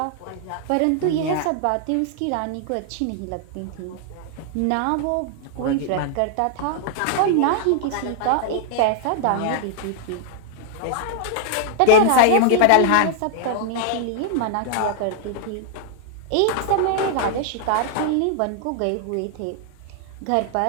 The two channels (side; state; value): both; different; correlation -0.01